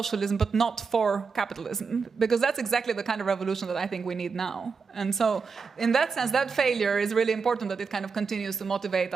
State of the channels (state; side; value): quieter; left; 5.2 dB